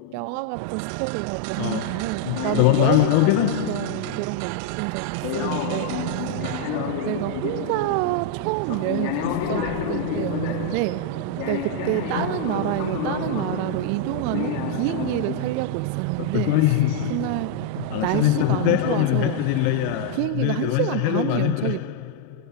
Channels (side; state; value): both; different; correlation -0.01